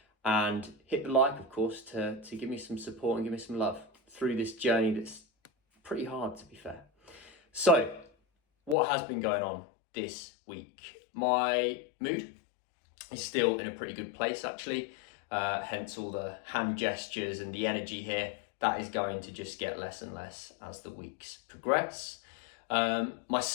And hit the like, of course, to give me some support and give me some love through this journey that's pretty hard, to be fair. So, what has been going on this week? My mood is still in a pretty good place, actually. Hence all the hand gestures and the energy here. That is going to just get less and less as the weeks progress. My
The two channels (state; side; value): drops out; right; at 8.8 s